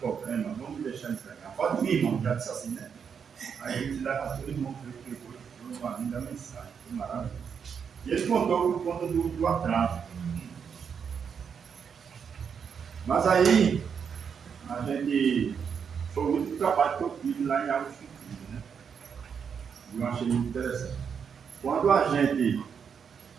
vamos deixar ele pregar. Pode vir, irmão, já disse assim, né? Aí a gente levantou o irmão, foi uma linda mensagem, foi maravilhoso. E ele contou por conta do atraso. Mas aí, a gente foi o último trabalho que eu fiz lá em Águas Compridas, né? Eu achei muito interessante. Quando a gente,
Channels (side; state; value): left; quieter; 6.9 dB